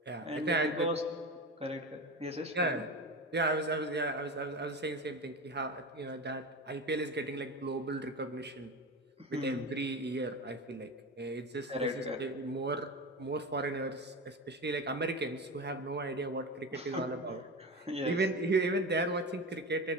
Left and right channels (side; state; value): both; normal; correlation 0.25